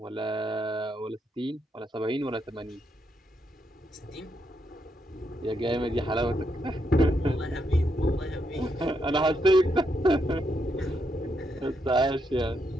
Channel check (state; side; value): normal; both; correlation 0.79